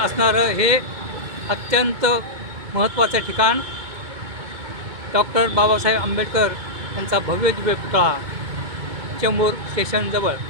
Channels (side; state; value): left; late; 2.2 ms